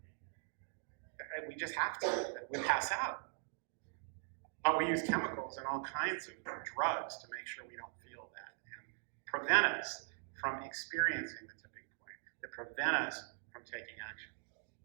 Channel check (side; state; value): left; silent; 50 dB below the other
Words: We just have to. We pass out. But we use chemicals and all kinds of drugs to make sure we don't feel that and prevent us from experiencing the tipping point, that prevent us from taking action.